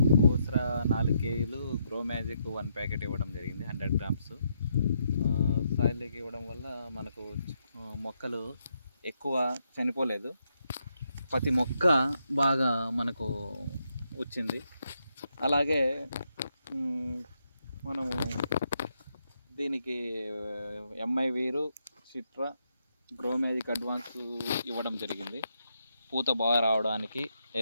ఓస్రా 4 కేజీలు, గ్రో మ్యాజిక్ 1 ప్యాకెట్ ఇవ్వడం జరిగింది, 100 గ్రామ్స్. సాయిల్లోకి ఇవ్వడం వల్ల మనకు మొక్కలు ఎక్కువ చనిపోలేదు, ప్రతి మొక్క బాగా మనకు వచ్చింది. అలాగే మనము దీనికి ఎంఐ వీరు, సిట్రా, గ్రో మ్యాజిక్ అడ్వాన్స్ ఇవ్వడం జరిగింది. పూత బాగా రావడానికి,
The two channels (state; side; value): inverted; both; correlation -0.78